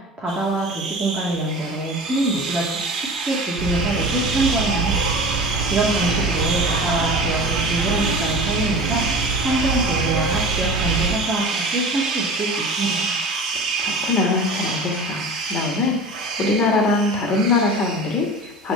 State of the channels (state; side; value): normal; both; correlation 0.36